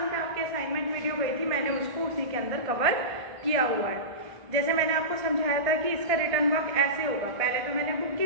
पे आपकी असाइनमेंट वीडियो गई थी मैंने उसको उसी के अंदर कवर किया हुआ है। जैसे मैंने आपको समझाया था कि इसका रिटर्न वर्क ऐसे होगा। पहले तो मैंने बुक की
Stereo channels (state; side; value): late; left; 1.5 ms